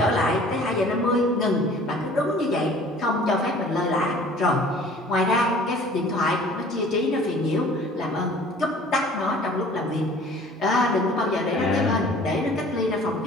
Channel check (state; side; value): normal; both; correlation 0.49